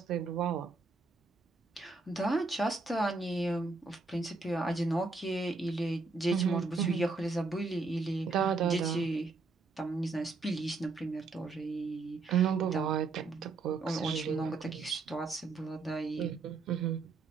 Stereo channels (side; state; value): left; quieter; 3.9 dB